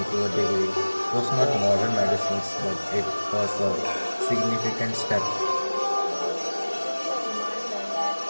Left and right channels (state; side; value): inverted; both; correlation -1.00